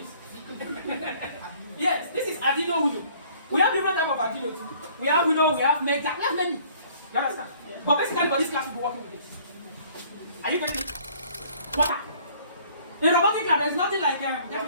Yes, this is Arduino Uno. We have different types of Arduino too. We have Uno, we have Mega, we have many. You understand? Yeah. But basically, for this class, we'll be working with this. Are you getting it? Water. In robotic lab, there's nothing like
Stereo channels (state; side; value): inverted; both; correlation -0.56